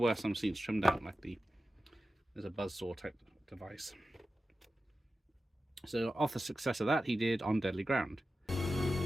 some scenes trimmed out, like there's a buzzsaw type device. So off the success of that, he did On Deadly Ground.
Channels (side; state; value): both; normal; correlation 0.93